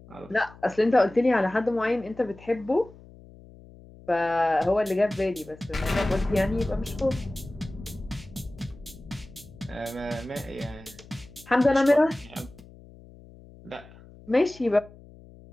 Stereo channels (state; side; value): noise; left; hum, 21 dB below the sound